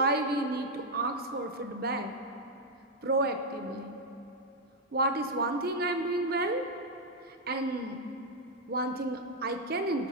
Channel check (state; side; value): normal; both; correlation 0.01